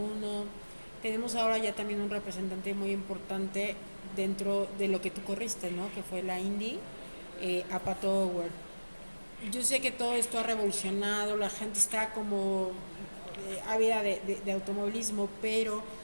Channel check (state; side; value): inverted; both; correlation -1.00